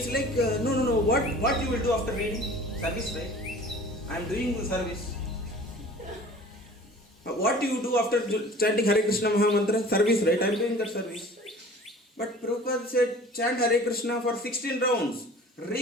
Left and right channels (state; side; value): normal; both; correlation 0.45